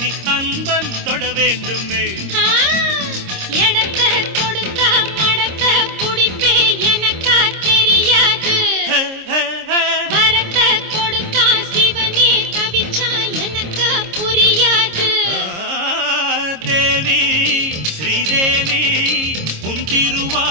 அன்பன் தொட வேண்டுமே. எடக்க கொடுத்த மடக்க புடிப்பே எனக்கா தெரியாது. வரத்த கொடுத்தா சிவனே தவிச்சா எனக்கா புரியாது. தேவி ஸ்ரீதேவி உன்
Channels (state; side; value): late; left; 26 ms